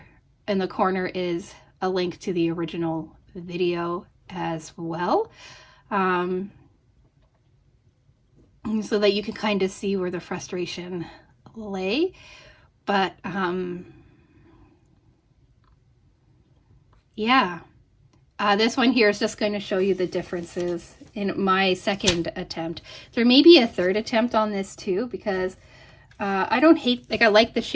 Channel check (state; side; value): identical; both; correlation 1.00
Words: in the corner is a link to the original video as well. So that you can kind of see where the frustration lay. But yeah, this one here is just going to show you the differences in my second attempt. There may be a third attempt on this too, because I don't hate, like, I like the